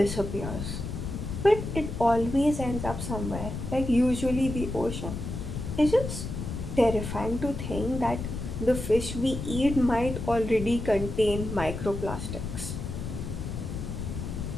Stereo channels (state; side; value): noise; left; rumble, 6 dB below the sound